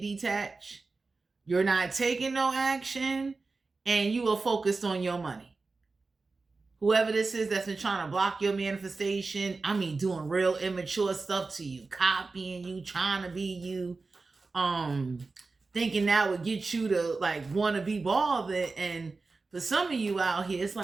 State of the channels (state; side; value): quieter; left; 3.9 dB